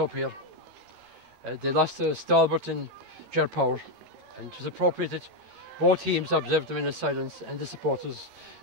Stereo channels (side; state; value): left; late; 13 ms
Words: here. They lost to Stalbert and Ger Power, and it was appropriate that both teams observed them in silence and the supporters